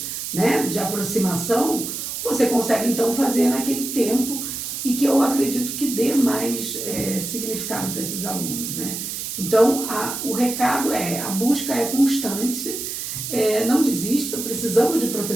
né, de aproximação, você consegue então fazer naquele tempo e que eu acredito que dê mais significado para esses alunos, né? Então, o recado a busca é constante, não desista, precisamos de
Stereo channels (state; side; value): noise; right; hiss, 5 dB below the sound